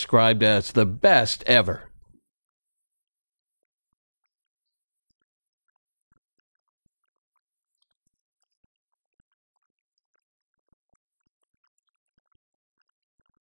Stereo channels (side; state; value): both; inverted; correlation -1.00